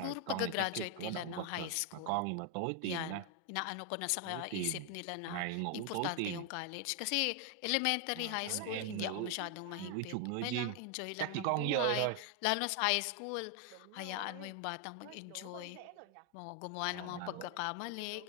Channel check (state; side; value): different; both; correlation 0.00